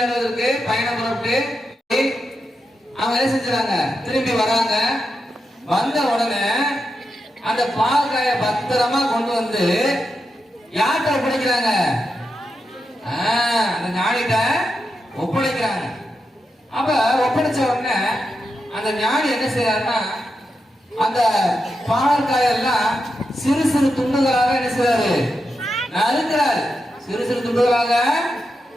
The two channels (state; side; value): normal; both; correlation 0.87